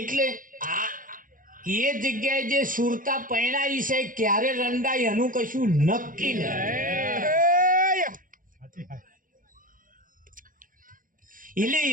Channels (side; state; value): left; late; 0.40 ms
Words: આ એ જગ્યાએ જે સુરતા પરણાઈ છે ક્યારે રંડાઈ એનું કશું નક્કી નહીં. એટલે